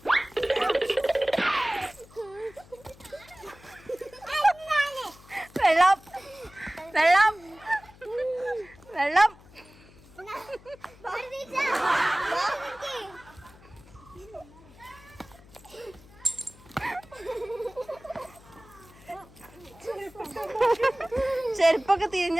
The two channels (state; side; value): noise; left; hum, 23 dB below the sound